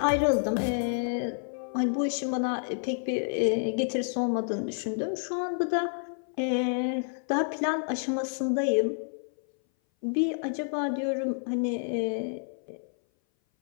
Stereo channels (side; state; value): right; silent; 58 dB below the other